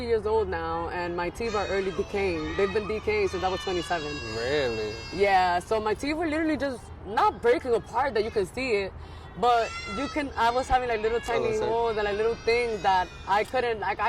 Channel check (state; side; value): identical; both; correlation 1.00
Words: years old now, and my teeth are early decaying. They've been decaying since I was 27. Really? Yeah. So my teeth were literally just not breaking apart that you can see it. But I was having like little tiny holes and like little things that I couldn't, like